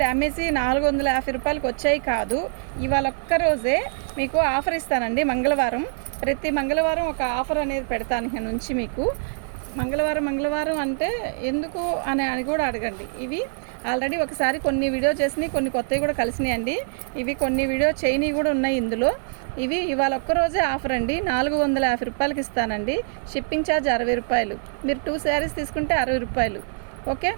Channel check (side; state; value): left; silent; 62 dB below the other